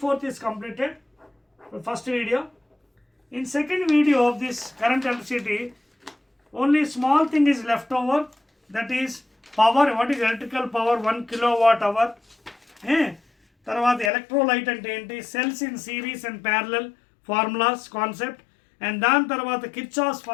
is completed, the first video. In second video of this current electricity, only small thing is left over, that is power. What is electrical power? 1 kilowatt hour. తర్వాత electrolyte అంటే ఏంటి, cells in series and parallel formulas concept, and దాని తర్వాత Kirchhoff's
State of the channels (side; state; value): right; drops out; at 14.1 s